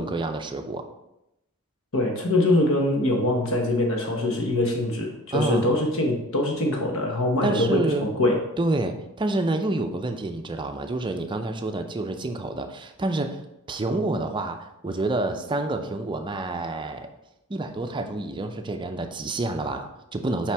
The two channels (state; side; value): normal; both; correlation 0.49